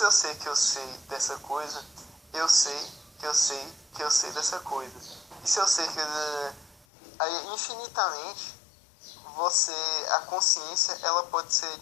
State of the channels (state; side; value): drops out; right; at 6.9 s